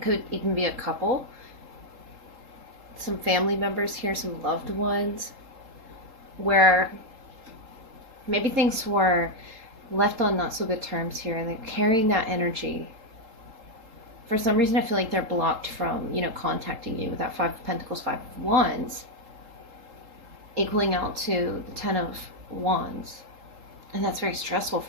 even be a couple, some family members here, some loved ones, where maybe things were left on not so good terms here, and they're carrying that energy. For some reason, I feel like they're blocked from, contacting you with that Five of Pentacles, Five of Wands, equaling out to the Ten of Wands. And that's very stressful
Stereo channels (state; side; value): late; left; 3.8 ms